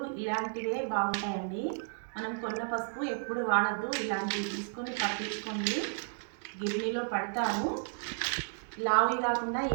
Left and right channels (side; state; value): left; silent; digital silence